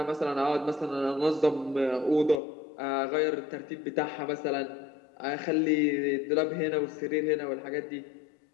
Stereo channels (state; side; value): drops out; right; at 2.4 s